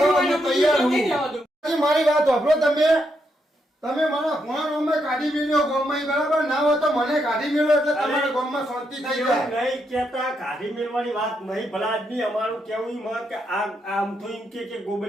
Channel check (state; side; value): normal; both; correlation 0.80